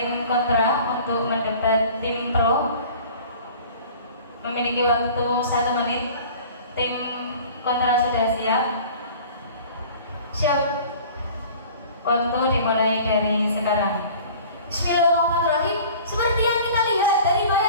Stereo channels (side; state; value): both; inverted; correlation -0.45